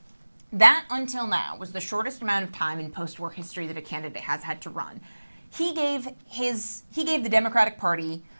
that until now was the shortest amount of time in post-war history that a candidate has had to run. He gave the Democratic Party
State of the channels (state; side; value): inverted; both; correlation -1.00